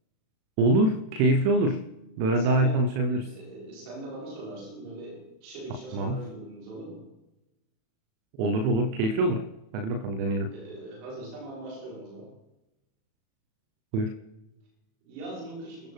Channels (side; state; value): left; late; 37 ms